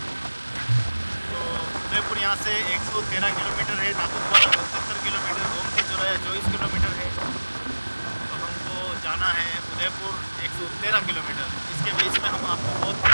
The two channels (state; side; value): inverted; both; correlation -1.00